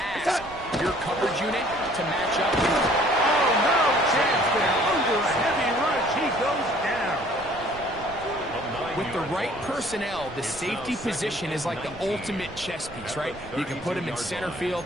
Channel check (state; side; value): noise; right; rumble, 18 dB below the sound